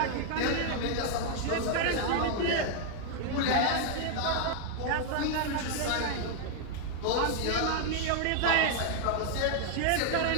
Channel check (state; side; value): different; both; correlation 0.00